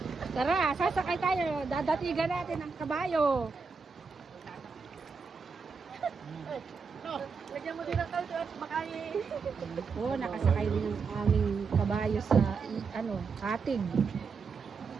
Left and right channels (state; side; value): quieter; left; 5.0 dB